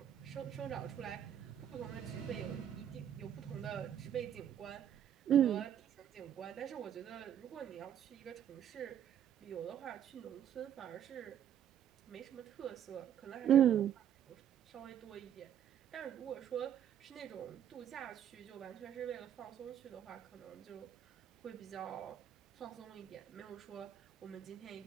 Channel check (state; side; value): quieter; left; 9.7 dB